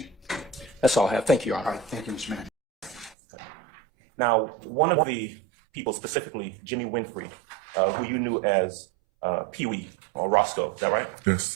That's all I have. Thank you, Your All Honor. right, thank you, Mr. Mann. Now, one of the people, specifically Jimmy Winfrey, who you knew as Pee Wee or Roscoe, is that right?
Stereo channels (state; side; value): drops out; left; at 3.2 s